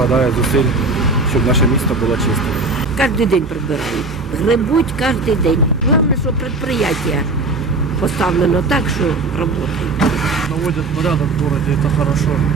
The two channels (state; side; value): quieter; left; 3.4 dB